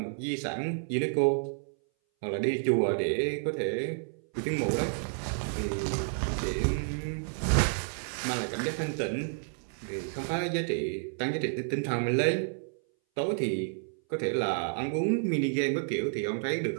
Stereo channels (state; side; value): silent; left; 58 dB below the other